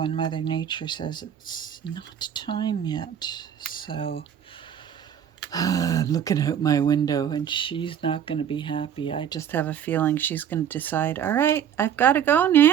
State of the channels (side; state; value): left; quieter; 9.1 dB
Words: Mother Nature says it's not time yet. So I'm looking out my window and she's not going to be happy. I just have a feeling she's going to decide, all right, I've got to go